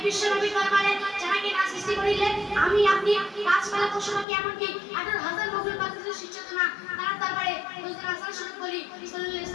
বিশ্বনবীর দরবারে জানাকে না সৃষ্টি করিলে আমি আপনি গাছপালা পশু পাখি এমনকি 18,000 মখলুক পাখির সৃষ্টি হতো না। তার দরবারে হুজুর হাসান স্বরূপ বলি সাল্লাল্লাহু আলাইহি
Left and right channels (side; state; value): right; drops out; at 4.2 s